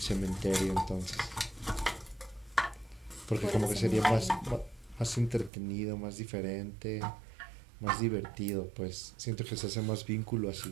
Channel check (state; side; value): drops out; left; at 5.5 s